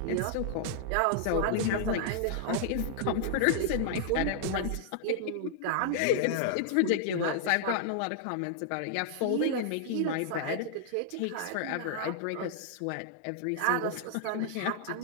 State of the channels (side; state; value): both; different; correlation -0.01